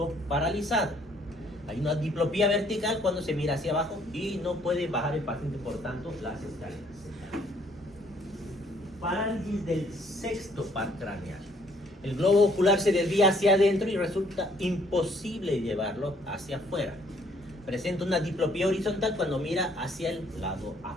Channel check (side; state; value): both; normal; correlation 0.64